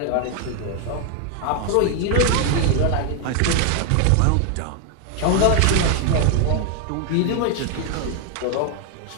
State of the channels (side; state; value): both; different; correlation 0.00